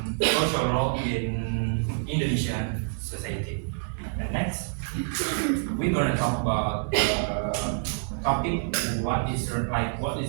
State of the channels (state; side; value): silent; left; digital silence